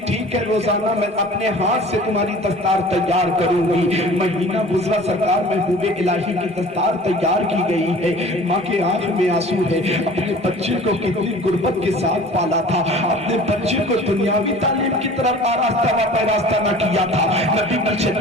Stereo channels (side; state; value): both; normal; correlation 0.44